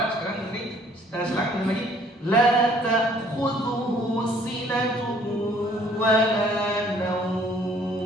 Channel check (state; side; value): normal; both; correlation 0.59